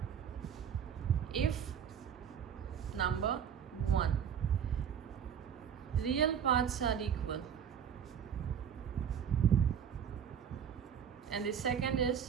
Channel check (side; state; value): left; quieter; 8.1 dB